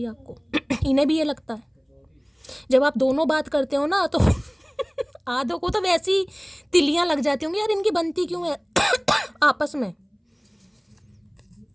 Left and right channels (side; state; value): both; identical; correlation 1.00